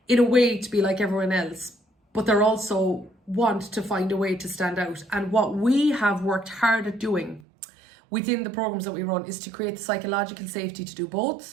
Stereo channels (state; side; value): drops out; left; at 7.4 s